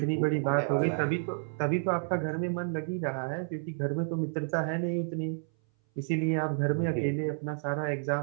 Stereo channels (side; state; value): left; silent; 58 dB below the other